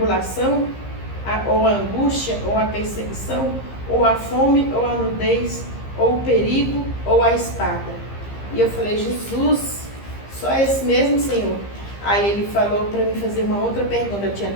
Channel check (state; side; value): late; right; 15 ms